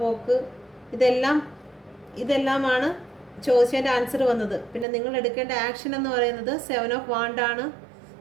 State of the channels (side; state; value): left; drops out; at 4.9 s